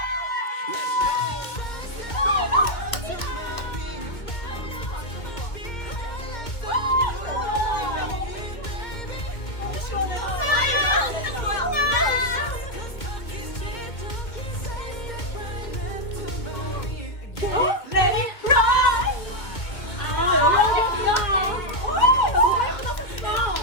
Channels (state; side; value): late; right; 2.2 ms